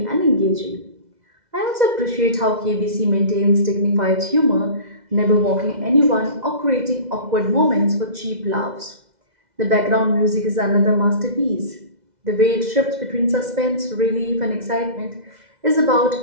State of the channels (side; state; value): left; late; 2.0 ms